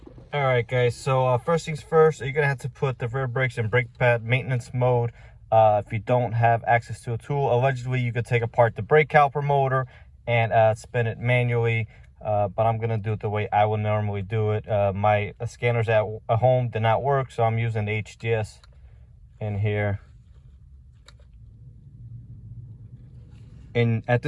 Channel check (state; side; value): identical; both; correlation 1.00